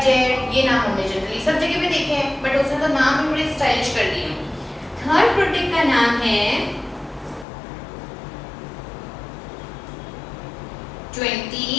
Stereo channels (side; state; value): right; drops out; at 7.5 s